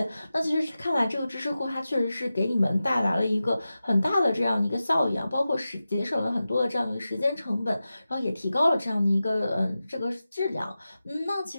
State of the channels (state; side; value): inverted; both; correlation -0.94